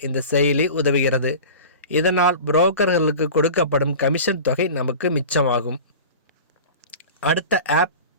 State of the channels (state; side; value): inverted; both; correlation -0.35